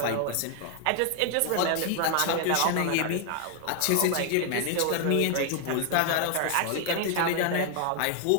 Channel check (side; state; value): both; different; correlation 0.00